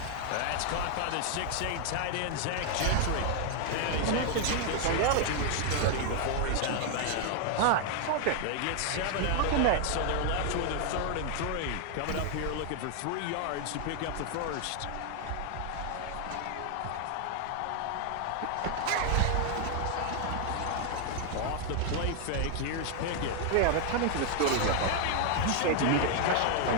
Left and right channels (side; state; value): both; different; correlation 0.00